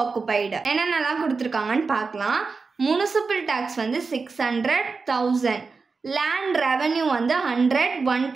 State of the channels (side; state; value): left; quieter; 4.5 dB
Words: என்னென்னலாம் கொடுத்துருக்காங்கன்னு பார்க்கலாம். முனிசிபல் டேக்ஸ் வந்து 600,000. லேண்ட் ரெவன்யூ வந்து 100,